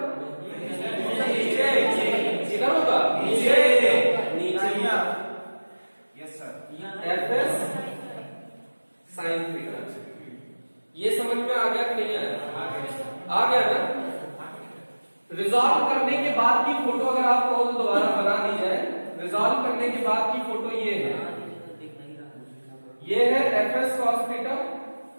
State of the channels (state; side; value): inverted; both; correlation -1.00